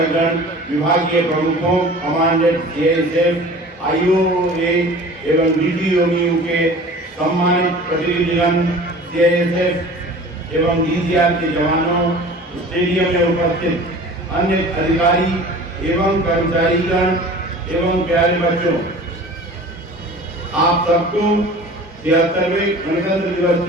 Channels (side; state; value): both; normal; correlation 0.42